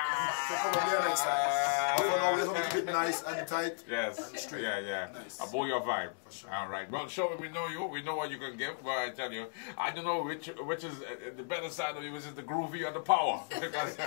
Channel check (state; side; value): silent; right; digital silence